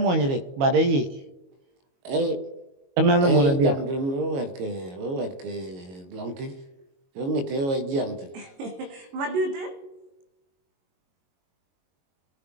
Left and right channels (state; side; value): late; left; 22 ms